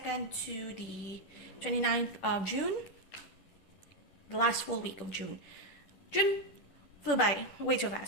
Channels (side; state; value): right; late; 10 ms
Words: to the 29th of June. The last full week of June. June flew by way too